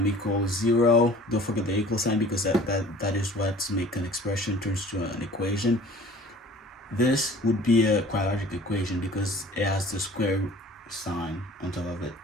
equals 0. Don't forget the equal sign, because that is what makes an expression turns to an equation. This would be a quadratic equation because it has the square sign on top of it.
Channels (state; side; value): normal; both; correlation 0.47